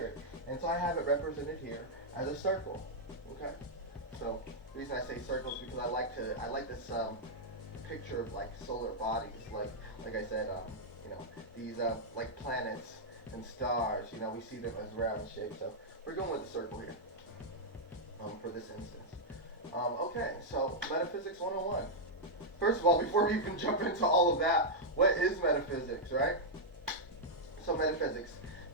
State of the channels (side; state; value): both; normal; correlation -0.05